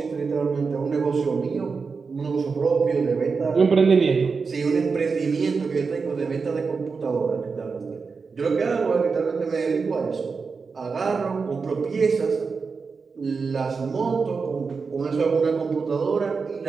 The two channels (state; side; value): quieter; left; 4.9 dB